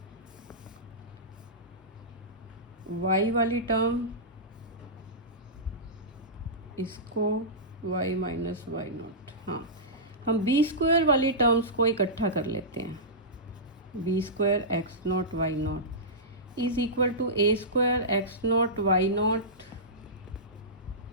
y वाली टर्म इसको y माइनस वाई नॉट, हाँ हम बी स्क्वायर वाली टर्म्स को इकट्ठा कर लेते हैं, b square x naught y naught is equal to a square x naught y naught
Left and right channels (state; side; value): normal; both; correlation -0.17